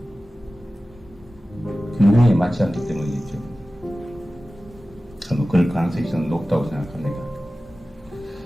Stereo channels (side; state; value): both; normal; correlation 0.96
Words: 균형에 맞지 않기 때문이겠죠. 그럴 가능성이 저는 높다고 생각합니다.